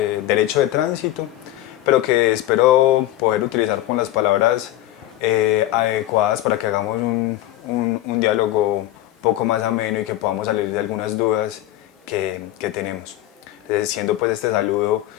derecho de tránsito, pero que espero poder utilizar con las palabras adecuadas para que hagamos un diálogo un poco más ameno y que podamos salir de algunas dudas que tenemos. Siendo pues este saludo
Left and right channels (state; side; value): quieter; right; 14.4 dB